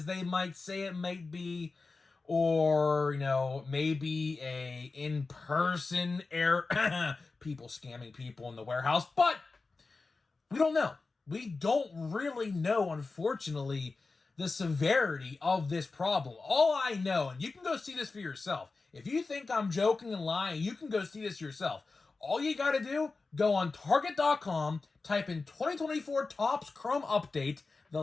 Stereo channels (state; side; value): quieter; right; 3.9 dB